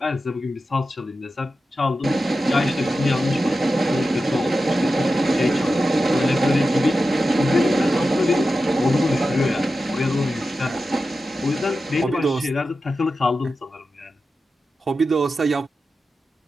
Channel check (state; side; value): normal; both; correlation 0.92